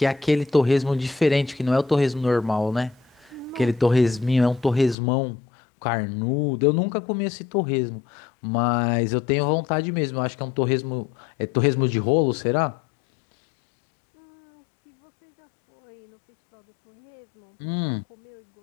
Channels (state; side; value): drops out; right; at 5.0 s